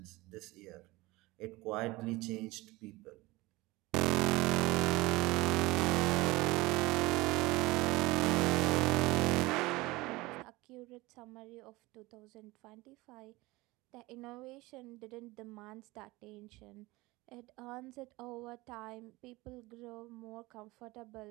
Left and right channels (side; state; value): left; quieter; 21.1 dB